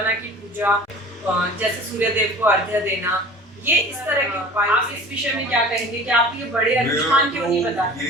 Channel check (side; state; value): both; normal; correlation 0.42